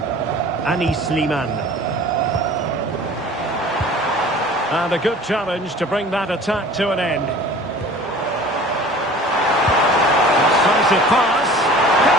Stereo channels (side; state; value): both; normal; correlation 0.44